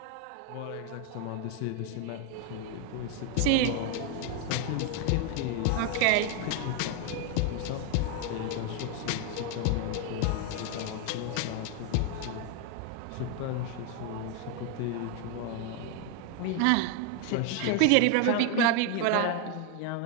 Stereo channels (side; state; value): both; different; correlation 0.01